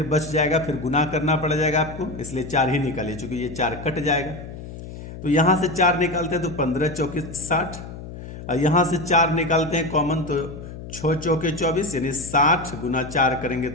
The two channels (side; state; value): left; noise; hum, 12 dB below the sound